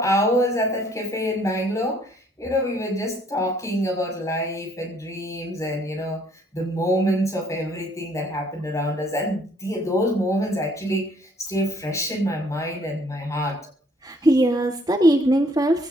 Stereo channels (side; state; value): both; normal; correlation 0.63